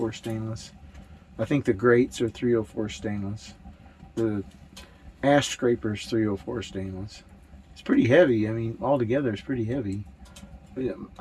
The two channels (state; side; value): identical; both; correlation 1.00